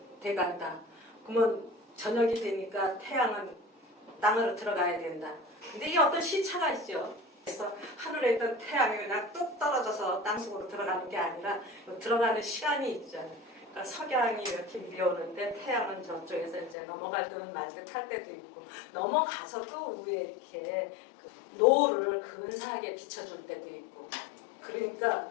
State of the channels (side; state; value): right; drops out; at 16.8 s